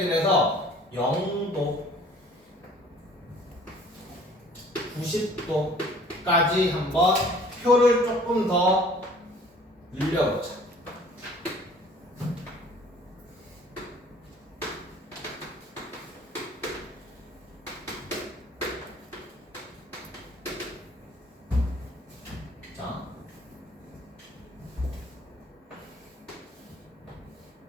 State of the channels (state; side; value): normal; both; correlation 0.52